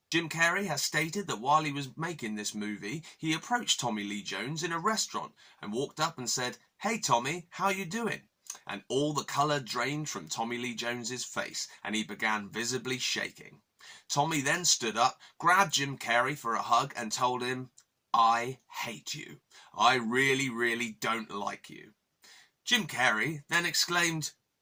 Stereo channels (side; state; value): both; identical; correlation 1.00